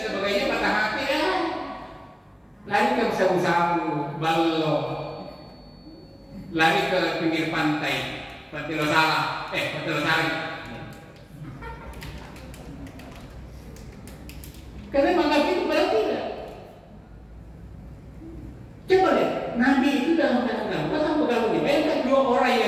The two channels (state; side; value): identical; both; correlation 1.00